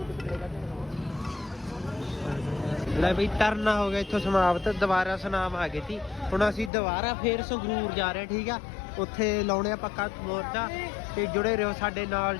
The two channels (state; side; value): drops out; right; at 6.7 s